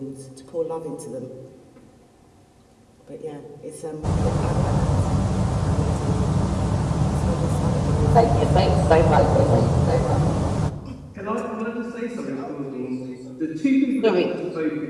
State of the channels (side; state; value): both; identical; correlation 1.00